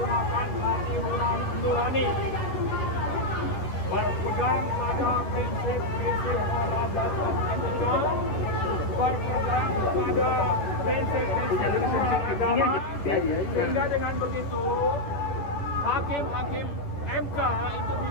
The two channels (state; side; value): late; right; 10 ms